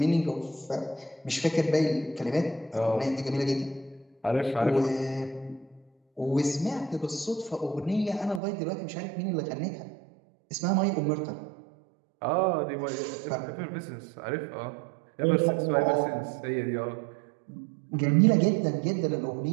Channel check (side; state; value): left; drops out; at 8.4 s